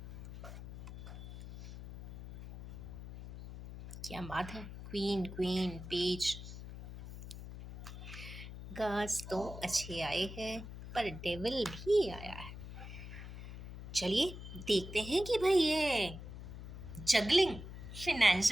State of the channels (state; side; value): noise; left; hum, 11 dB below the sound